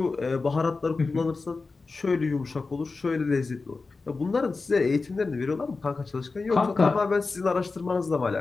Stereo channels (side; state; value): right; quieter; 4.0 dB